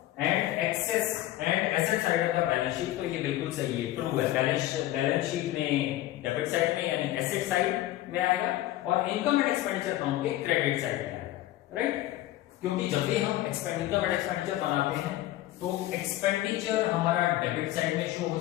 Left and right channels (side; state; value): right; quieter; 15.1 dB